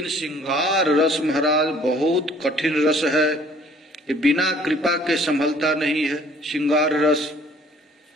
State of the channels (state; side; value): normal; both; correlation 0.56